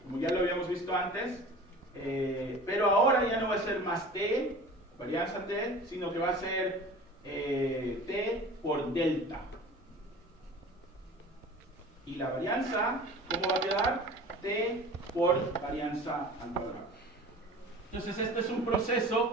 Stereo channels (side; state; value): both; normal; correlation 0.40